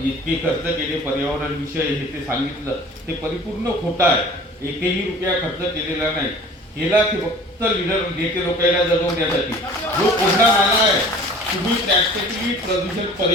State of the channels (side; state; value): both; normal; correlation 0.45